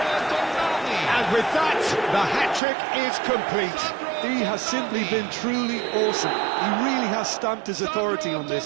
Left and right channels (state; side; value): drops out; left; at 2.6 s